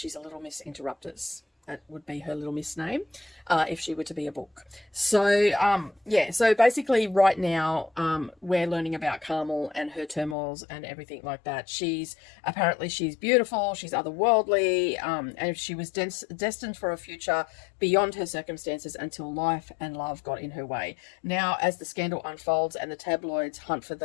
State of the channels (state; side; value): drops out; right; at 10.4 s